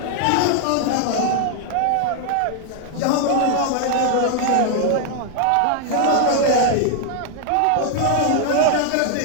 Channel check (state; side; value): different; both; correlation 0.00